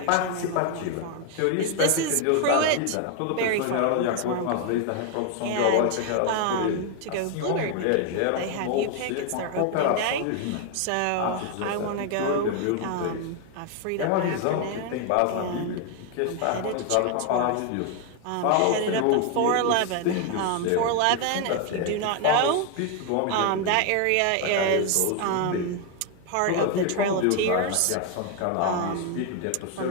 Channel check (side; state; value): both; different; correlation 0.01